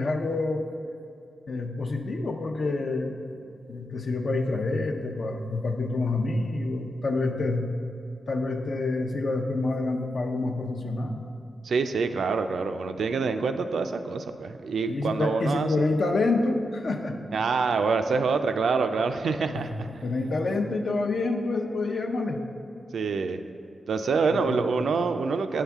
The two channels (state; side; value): normal; both; correlation 0.83